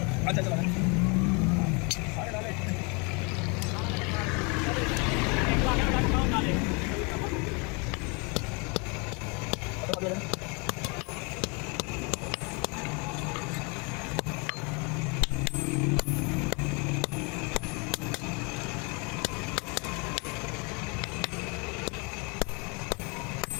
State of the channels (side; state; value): right; quieter; 31.8 dB